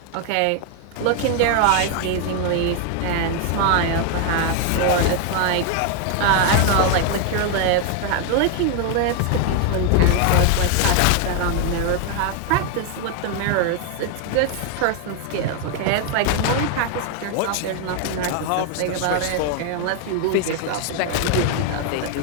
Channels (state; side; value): different; both; correlation 0.00